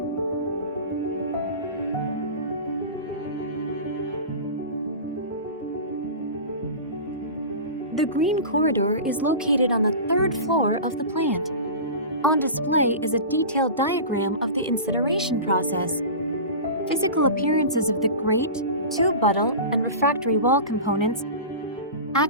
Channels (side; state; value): both; inverted; correlation -0.31